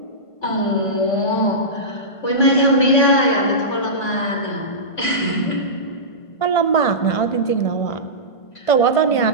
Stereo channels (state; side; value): late; right; 1.5 ms